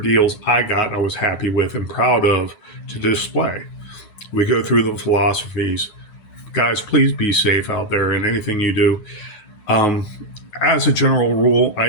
I was happy with and proud of to display. We go through the philosophies. Guys, please be safe out there in anything you do. As a general rule, I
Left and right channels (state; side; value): late; right; 9.4 ms